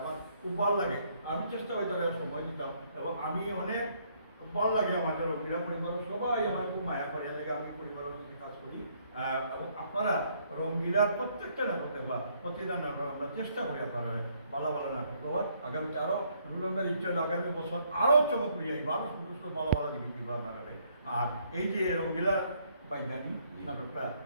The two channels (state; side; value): inverted; both; correlation -0.69